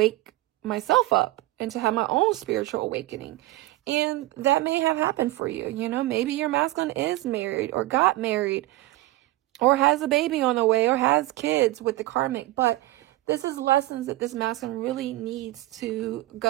myself up and to have my own spiritual awakening. And that may have happened for you. You know, maybe your masculine is married or got married or has a baby on the way or has kids with the karmic. But this is lessons that this masculine really needs to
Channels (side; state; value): left; quieter; 18.0 dB